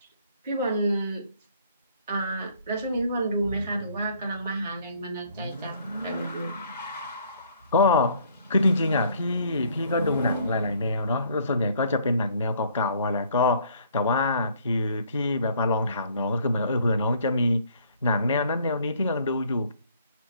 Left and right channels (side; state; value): both; inverted; correlation -0.61